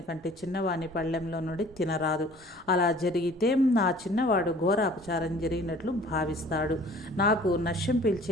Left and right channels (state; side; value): normal; both; correlation 0.50